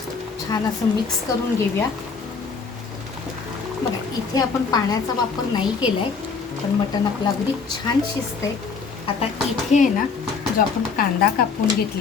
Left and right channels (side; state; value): right; quieter; 5.2 dB